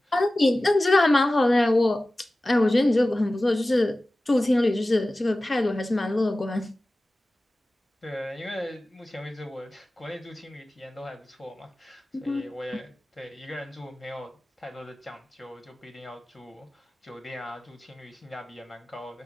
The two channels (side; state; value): both; normal; correlation 0.96